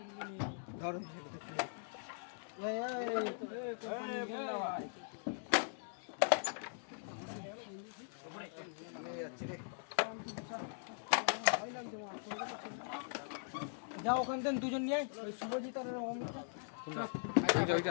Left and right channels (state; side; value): silent; right; digital silence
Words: যাও ওখান থেকে দুজন নিয়ে আয়, ওই শুভজিৎ আর অমিত।